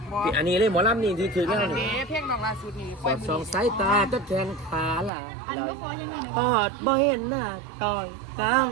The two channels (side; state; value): left; drops out; at 5.1 s